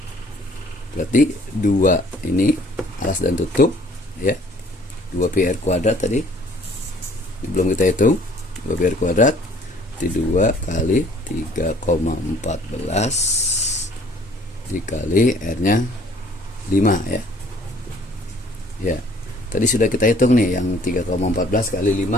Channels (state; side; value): normal; both; correlation 0.57